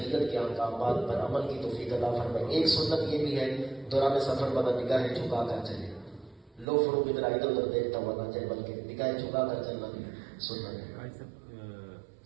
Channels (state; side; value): drops out; left; at 6.7 s